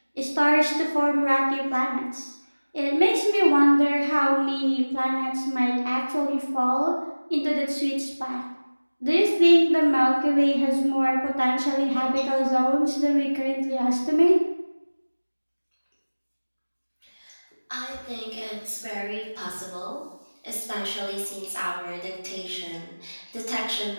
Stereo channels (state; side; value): inverted; both; correlation -1.00